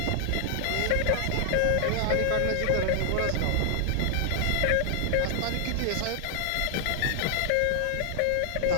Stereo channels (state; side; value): different; both; correlation 0.00